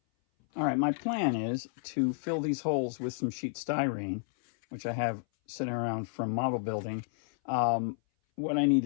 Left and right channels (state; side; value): silent; right; 57 dB below the other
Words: All right, my plan is to fill these holes with some sheet styrene, which I have sitting around from model building. What I need